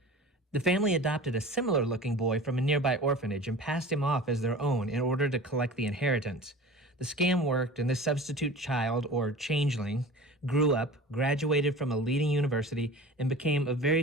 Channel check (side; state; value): both; normal; correlation 0.38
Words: The family adopted a similar-looking boy from a nearby orphanage and passed him off as their own in order to collect the inheritance. The scam worked, and this substitute child, or changeling, grew up, graduated from a leading university, and became a